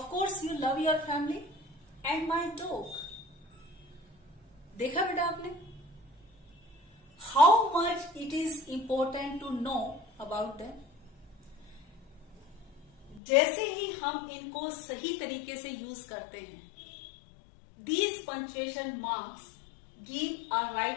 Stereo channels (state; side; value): drops out; right; at 13.2 s